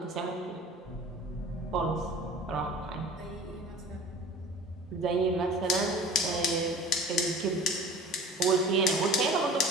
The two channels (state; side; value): normal; both; correlation 0.42